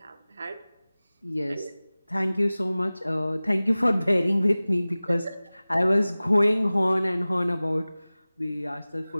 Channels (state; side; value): inverted; both; correlation -0.98